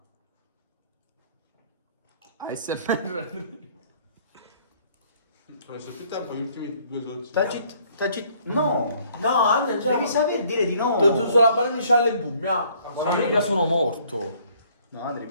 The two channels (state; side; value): inverted; both; correlation -0.61